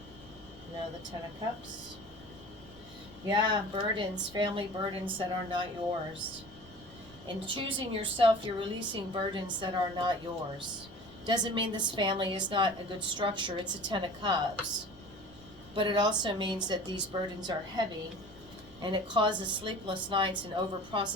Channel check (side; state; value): right; noise; rumble, 22 dB below the sound